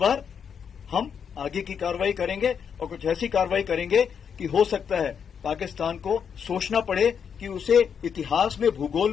हम आगे की कार्रवाई करेंगे और कुछ ऐसी कार्रवाई करेंगे कि हो सकता है पाकिस्तान को सोचना पड़े कि उसे इतिहास में, भूगोल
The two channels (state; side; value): quieter; right; 7.2 dB